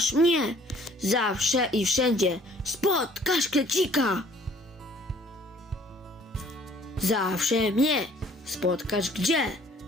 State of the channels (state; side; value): normal; both; correlation 0.57